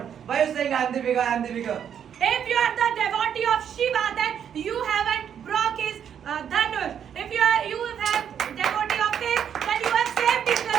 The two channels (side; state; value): left; quieter; 8.6 dB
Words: Why are you saying I am the bigger, I am the bigger? If you are the devotee of Shiva, then you haven't broke his dhanush. If you have devotee